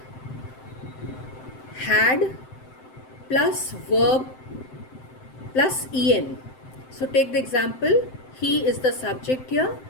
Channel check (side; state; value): right; late; 7.7 ms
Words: had plus verb plus en. So take the example, he is the subject here,